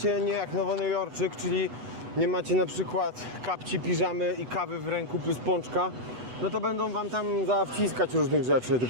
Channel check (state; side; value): late; left; 8.1 ms